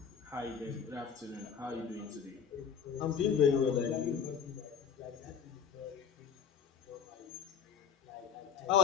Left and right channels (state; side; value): quieter; right; 7.1 dB